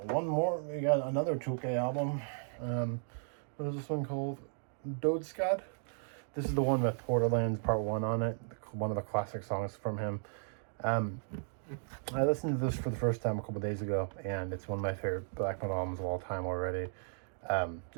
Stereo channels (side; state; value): left; silent; digital silence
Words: one more. We got another Tolke album. What is this one called? Dodeskad. This is the one with Borderlands Part 1 on it. One of the classic songs from him. I listened to this for the first time a couple days ago, and it's one of my favorite black metal albums of all time already.